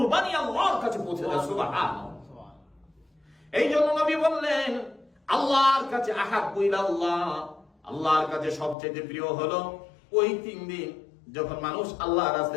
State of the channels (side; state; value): right; drops out; at 8.8 s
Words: আল্লাহর কাছে পৌঁছে যায়। সুবহানাল্লাহ। এই জন্য নবী বললেন আল্লাহর কাছে আহাব্বু ইলাল্লাহ, আল্লাহর কাছে সবচেয়ে প্রিয় হলো ওই 3 দিন যখন মানুষ আল্লাহর